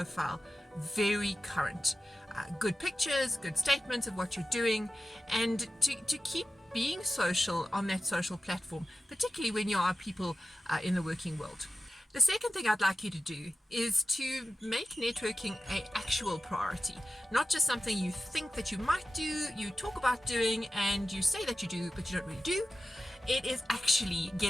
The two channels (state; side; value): normal; both; correlation 0.93